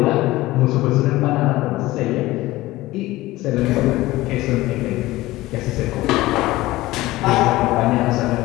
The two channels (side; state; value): right; quieter; 18.0 dB